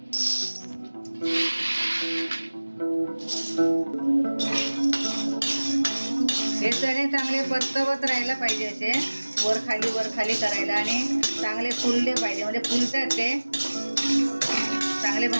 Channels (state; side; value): inverted; both; correlation -1.00